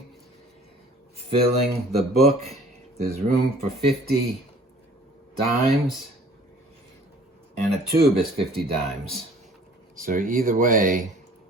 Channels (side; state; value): both; normal; correlation 0.51